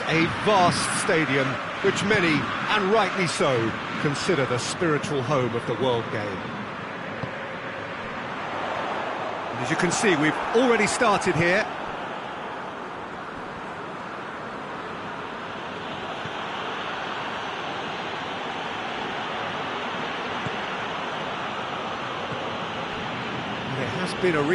a vast stadium, which many, and rightly so, consider the spiritual home of the world game. And as you can see, we've already started here. There has been a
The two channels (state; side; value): identical; both; correlation 1.00